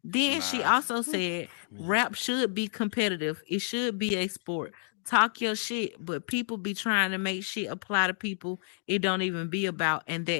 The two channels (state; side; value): silent; right; digital silence